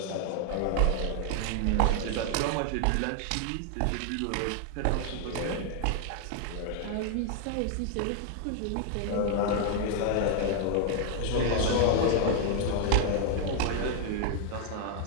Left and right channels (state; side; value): different; both; correlation 0.00